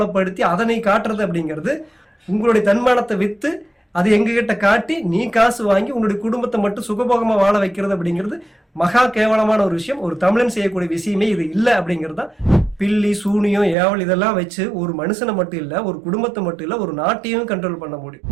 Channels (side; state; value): left; drops out; at 13.8 s